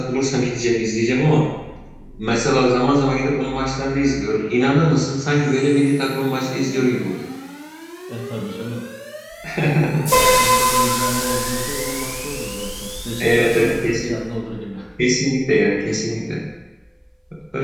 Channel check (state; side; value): identical; both; correlation 1.00